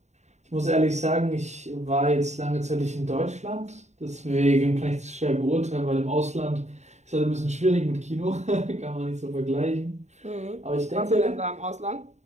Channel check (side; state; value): left; late; 0.33 ms